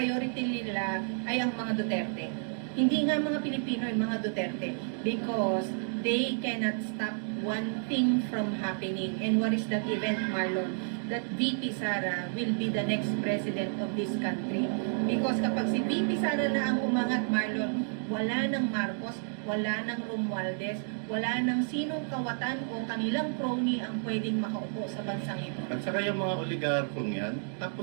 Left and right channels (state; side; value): silent; left; 57 dB below the other